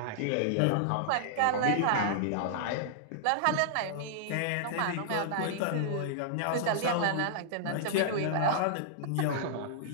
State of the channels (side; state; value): both; different; correlation -0.01